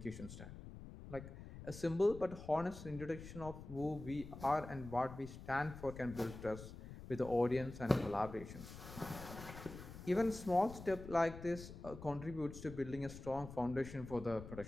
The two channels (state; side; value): noise; left; rumble, 12 dB below the sound